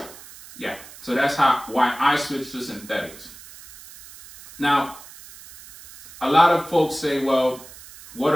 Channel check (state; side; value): noise; right; hiss, 18 dB below the sound